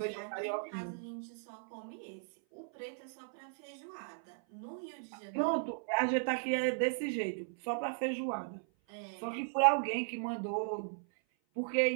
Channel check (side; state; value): left; silent; 53 dB below the other